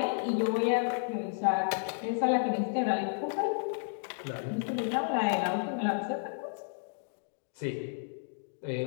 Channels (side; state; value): right; silent; digital silence